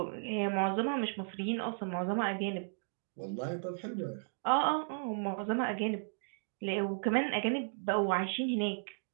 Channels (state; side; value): silent; left; digital silence